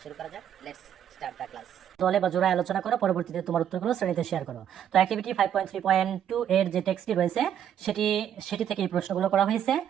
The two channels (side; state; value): left; quieter; 9.7 dB